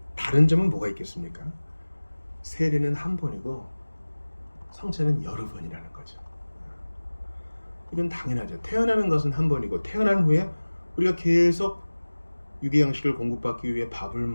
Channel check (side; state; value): both; inverted; correlation -1.00